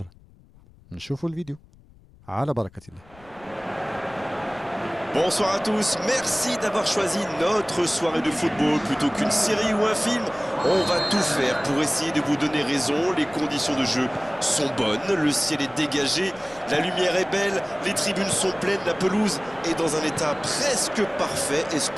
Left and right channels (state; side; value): noise; left; rumble, 26 dB below the sound